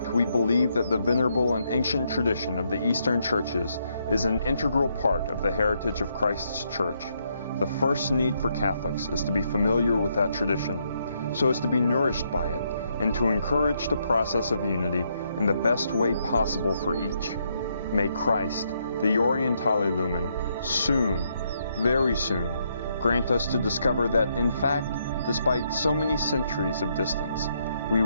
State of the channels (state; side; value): inverted; both; correlation -0.76